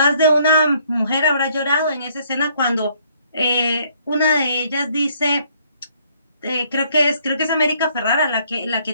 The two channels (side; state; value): both; inverted; correlation -0.65